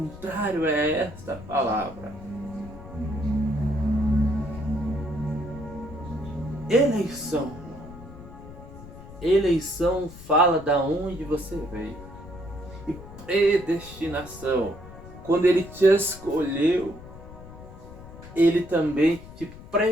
a esta palavra. Eleição. Eleição fala da onde você veio. E predestinação, quando ele te escolheu, ele também te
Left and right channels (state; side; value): noise; left; rumble, 16 dB below the sound